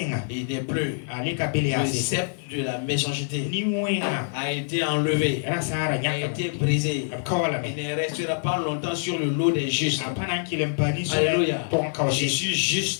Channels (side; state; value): right; silent; 61 dB below the other